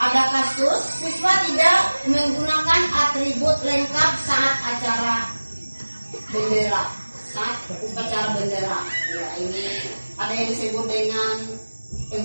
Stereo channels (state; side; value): inverted; both; correlation -1.00